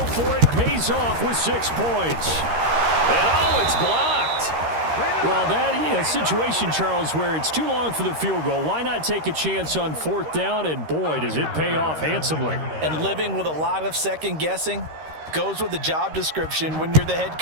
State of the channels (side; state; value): left; late; 13 ms